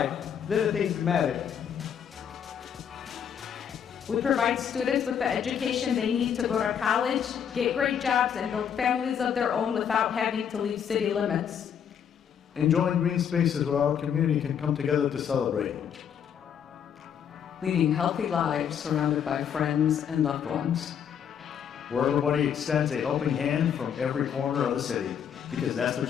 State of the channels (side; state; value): right; quieter; 8.3 dB